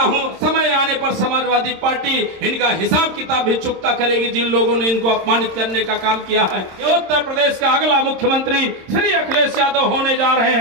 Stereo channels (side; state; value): left; late; 26 ms